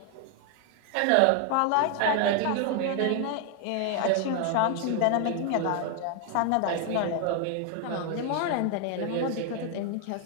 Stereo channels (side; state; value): both; different; correlation 0.00